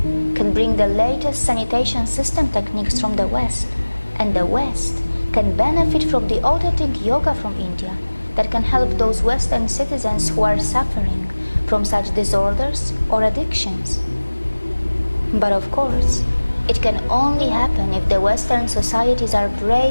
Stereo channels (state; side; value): inverted; both; correlation -1.00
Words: can bring the latest sanitation system techniques from the West, and the West can benefit from the authentic yoga from India that can help those Western citizens who are suffering from such disorders or addictions. But of course, it can only happen if the Western societies are